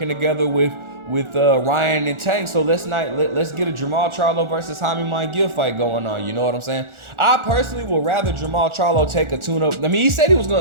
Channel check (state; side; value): late; left; 1.4 ms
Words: together with Ryan and Tank. So let's get a Jermall Charlo versus Jaime Munguia fight going on. You know what I'm saying? I personally would rather Jermall Charlo take a tune-up. I mean, he said he was